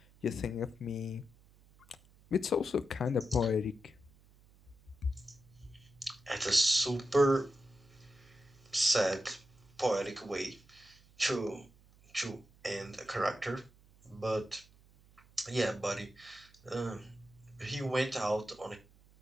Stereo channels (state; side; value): noise; right; hum, 27 dB below the sound